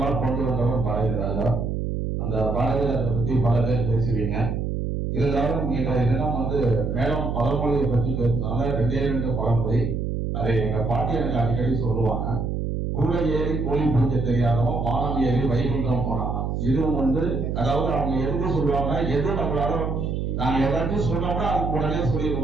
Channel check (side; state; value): right; noise; hum, 1 dB below the sound